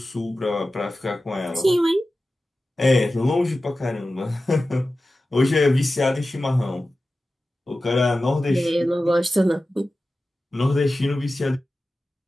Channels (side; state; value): both; normal; correlation 0.94